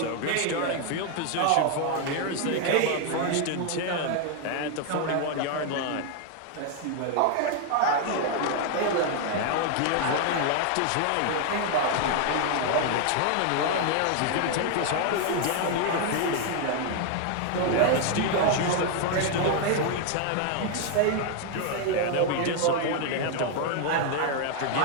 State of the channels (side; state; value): both; different; correlation 0.00